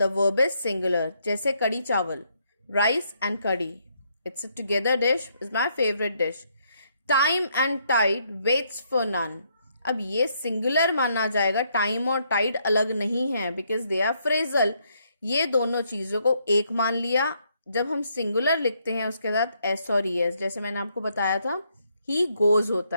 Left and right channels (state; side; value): inverted; both; correlation -0.73